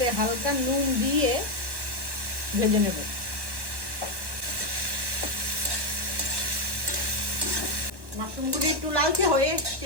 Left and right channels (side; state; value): left; late; 1.0 ms